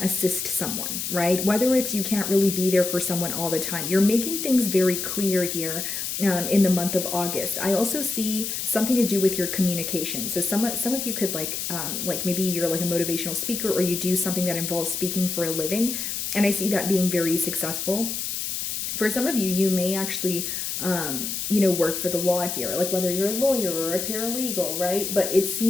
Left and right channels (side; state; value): left; noise; hiss, 3 dB below the sound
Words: assist someone, right? Whether it's you can't really be there for someone all the time, you're making things very clear here in the month of August. I also see something to do with your communication. So some of you could like maybe you're like a motivational speaker, or you do something that involves speaking for a living, and I see that being very successful. For some of you, you may actually work for the law here, like whether you're a lawyer or a paralegal, right? But it